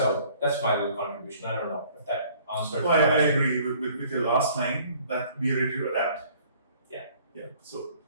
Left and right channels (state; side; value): inverted; both; correlation -0.56